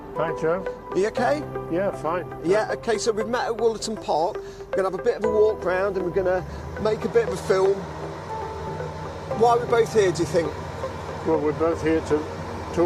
Hi Joe. Are you okay? Yeah, fine. Yeah, okay, so we've met at Wollaton Park. We're going to have a bit of a walk round and we're going to make a bit of a film. Why are we both here, do you think? Well, we're both here to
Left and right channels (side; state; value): both; identical; correlation 1.00